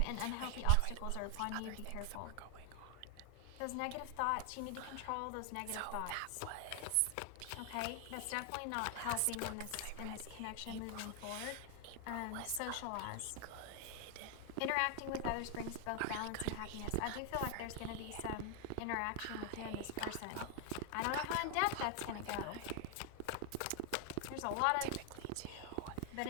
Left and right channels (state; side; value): different; both; correlation 0.00